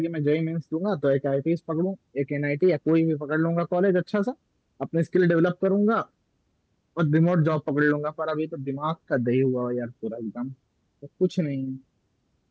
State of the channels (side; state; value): both; identical; correlation 1.00